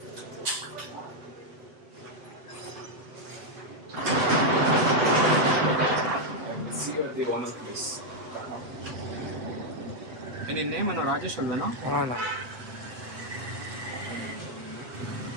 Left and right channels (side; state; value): left; late; 7.9 ms